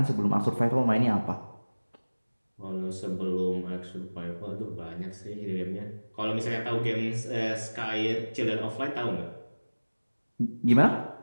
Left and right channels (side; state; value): both; inverted; correlation -1.00